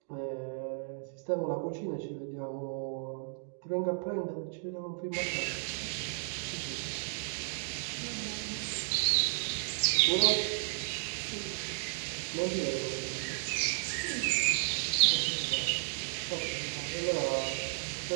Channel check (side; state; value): left; silent; digital silence